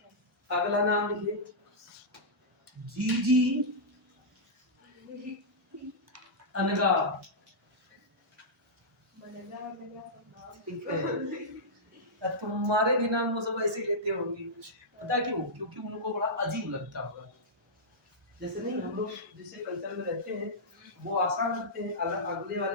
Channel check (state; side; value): normal; both; correlation -0.11